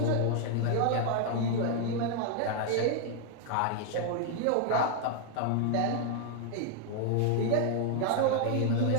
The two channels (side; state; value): both; different; correlation 0.00